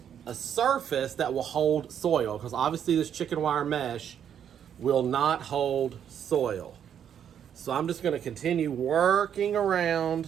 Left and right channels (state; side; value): quieter; left; 8.9 dB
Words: a surface that will hold soil, because obviously this chicken wire mesh will not hold soil. So I'm just going to continue working around